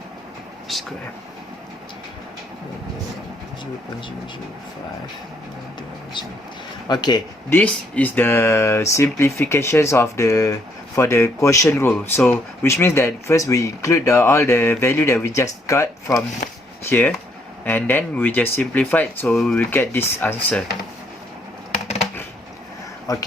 square 0.005. Okay, this is the simplifications of for the quotient rule. So which means that first we include all the value that we just got from here, and then we just simplify it, so we will get this answer.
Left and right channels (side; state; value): both; normal; correlation 0.70